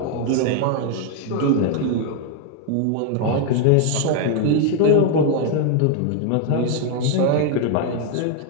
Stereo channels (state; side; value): different; both; correlation 0.01